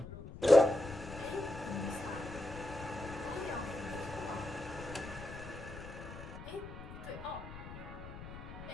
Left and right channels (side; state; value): left; noise; rumble, 12 dB below the sound